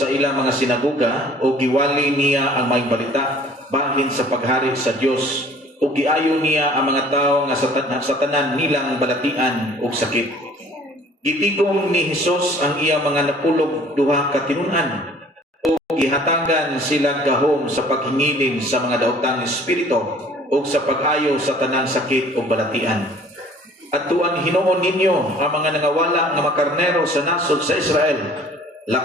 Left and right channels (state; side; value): normal; both; correlation 0.52